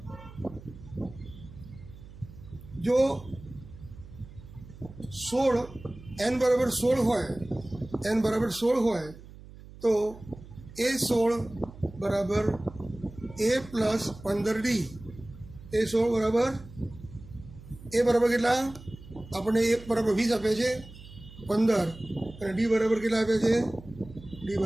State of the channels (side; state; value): right; noise; hum, 18 dB below the sound